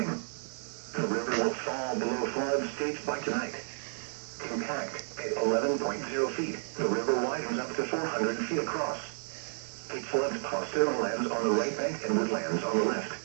The river will fall below flood stage by tonight. Impact at 11.0 feet. The river widens up to 400 feet across. It floods Pasteur lands on the right bank and woodlands on the left.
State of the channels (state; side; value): silent; left; digital silence